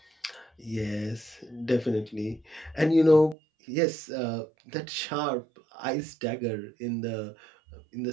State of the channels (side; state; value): left; drops out; at 3.4 s